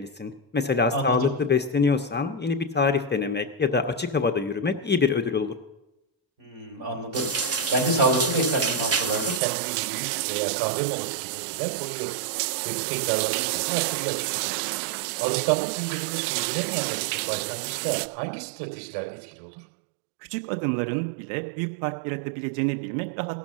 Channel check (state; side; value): drops out; left; at 9.4 s